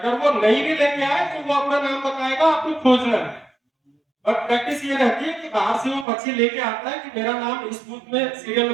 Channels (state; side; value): drops out; left; at 6.1 s